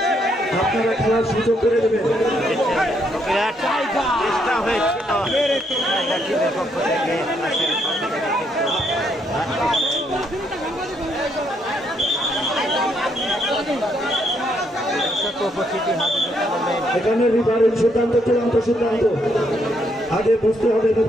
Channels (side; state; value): both; normal; correlation 0.74